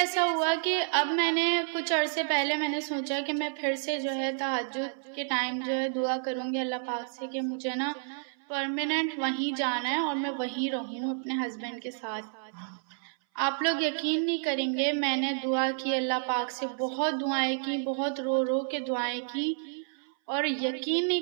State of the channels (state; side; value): silent; left; 58 dB below the other